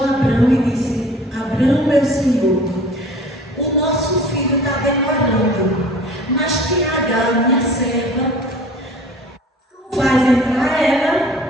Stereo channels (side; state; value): both; normal; correlation 0.46